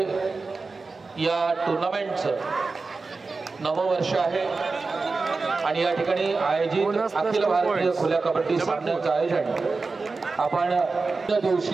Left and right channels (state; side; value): quieter; left; 4.0 dB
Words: या टुर्नामेंटचं नववर्ष आहे आणि या ठिकाणी आयोजित अखिल भारतीय खुल्या कबड्डी सामन्याचं आयोजन आपण